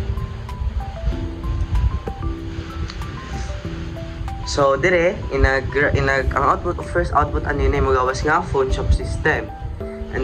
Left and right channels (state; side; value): identical; both; correlation 1.00